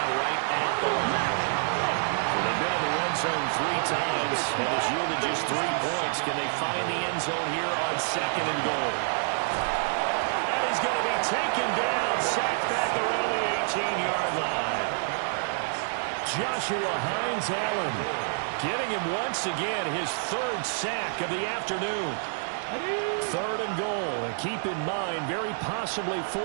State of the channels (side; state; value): left; silent; digital silence